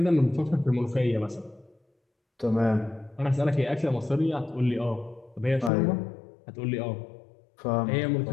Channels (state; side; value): drops out; right; at 5.7 s